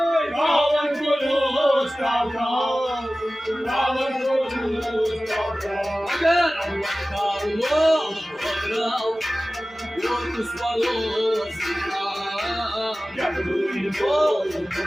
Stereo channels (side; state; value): both; normal; correlation 0.96